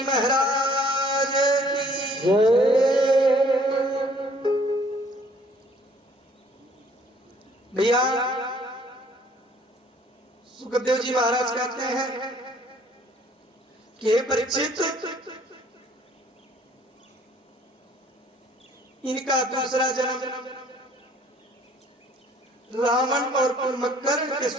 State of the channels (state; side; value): normal; both; correlation 0.58